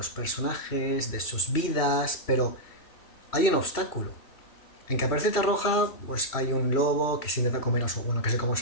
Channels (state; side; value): late; right; 3.1 ms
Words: personajes, de sus vidas, pero hay un obstáculo. En Caperucita Roja, pues hay un lobo que se intenta comer a su, bueno, que se come a